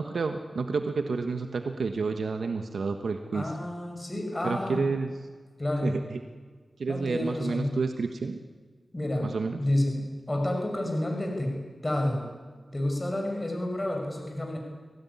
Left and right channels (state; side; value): normal; both; correlation 0.94